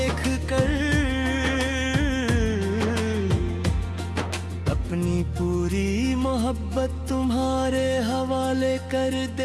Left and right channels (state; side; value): identical; both; correlation 1.00